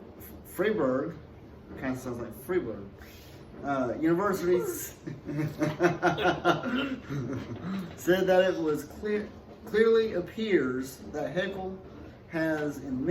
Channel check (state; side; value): identical; both; correlation 1.00